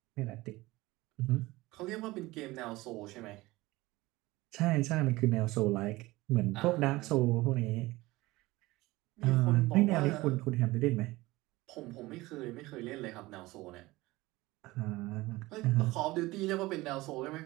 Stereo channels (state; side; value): quieter; left; 19.9 dB